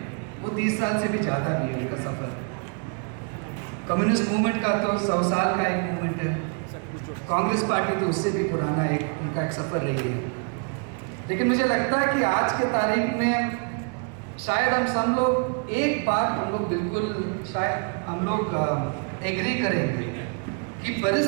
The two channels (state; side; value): quieter; left; 39.2 dB